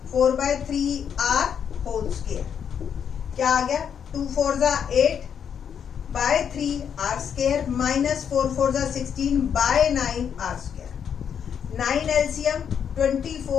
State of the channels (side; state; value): right; quieter; 7.9 dB